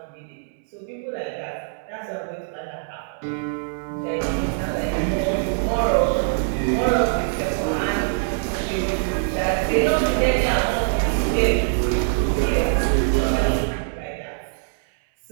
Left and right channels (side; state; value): left; silent; 63 dB below the other